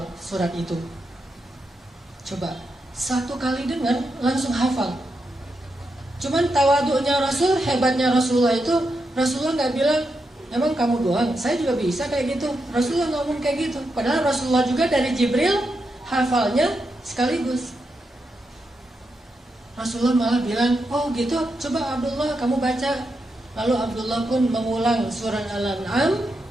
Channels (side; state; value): both; normal; correlation 0.85